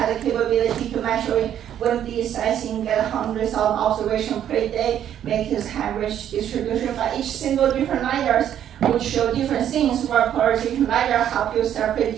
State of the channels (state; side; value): quieter; left; 10.3 dB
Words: the capability to measure wind beat sizing, get hundreds of observations per day, make this average distribution. But each single different LiDARs would show different things, where polarization LiDAR help you